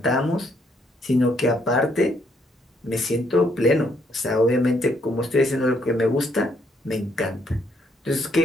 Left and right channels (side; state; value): both; normal; correlation 0.71